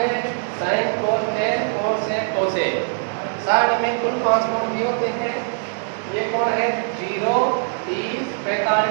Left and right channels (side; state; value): left; silent; 62 dB below the other